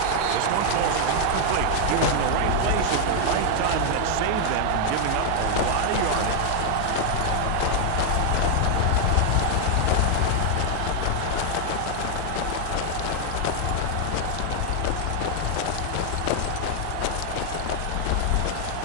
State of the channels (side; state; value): both; different; correlation 0.00